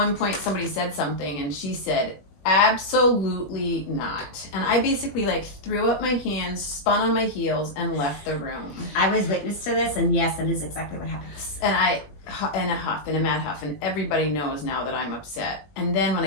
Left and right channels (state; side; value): late; right; 21 ms